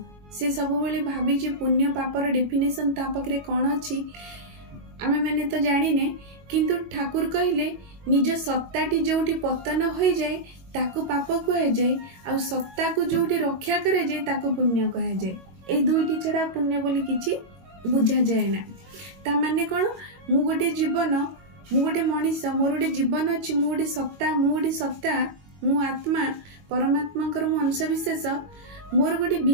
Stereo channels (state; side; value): late; left; 21 ms